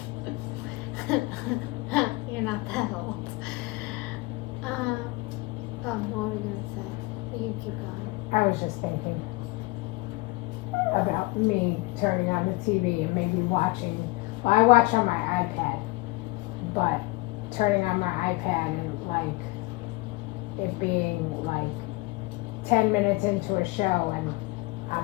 lady. You're not that old. What were you gonna say? You keep going. I was just thinking about me turning on the TV and maybe watching. Well, I watch on my iPad, but turning on my iPad and like it being like 10 minutes into a show and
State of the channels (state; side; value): quieter; right; 23.2 dB